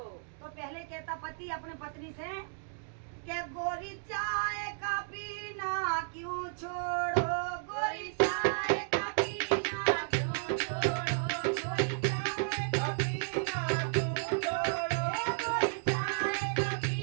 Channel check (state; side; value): silent; left; digital silence